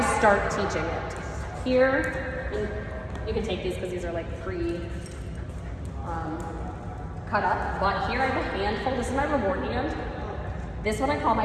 start teaching it. Here, you can take these because these are like cut up, but here I have a handful. This is my reward hand. This one I call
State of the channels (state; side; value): identical; both; correlation 1.00